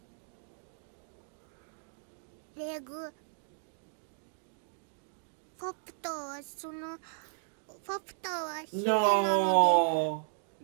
レグ、ファプタはそのファプタは姫なの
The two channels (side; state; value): left; silent; digital silence